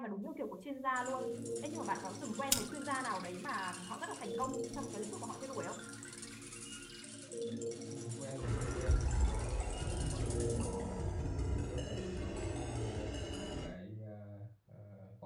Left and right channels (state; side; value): identical; both; correlation 1.00